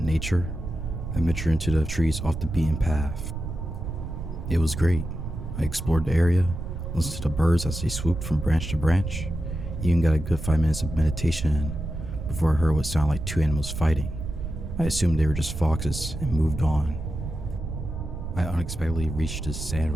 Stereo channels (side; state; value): right; noise; rumble, 6 dB below the sound